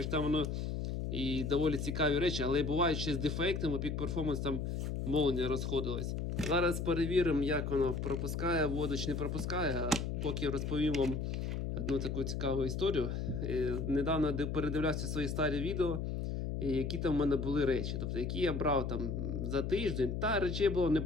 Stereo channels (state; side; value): noise; left; hum, 2 dB below the sound